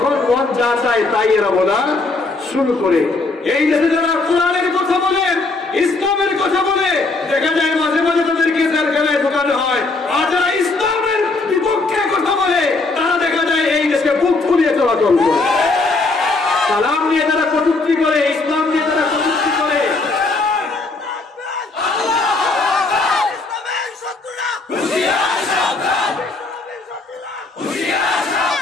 মন যা চায় তাই এরা বলা শুরু করে। এই দেশে যারা কোরআনের কথা বলে, ইসলামের কথা বলে, দেখা যায় মাঝে মাঝে তাদেরকে জেলখানায় ঢোকানো হয়। আর যারা ইসলামের বিপক্ষে কথা বলে তারা দেখা যায় এই দেশে বুক ফুলিয়ে চলাচল করে। সালাম নিয়ে যারা কটূক্তি করে, ইসলাম নিয়ে যারা কটূক্তি করে,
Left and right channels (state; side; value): quieter; right; 3.5 dB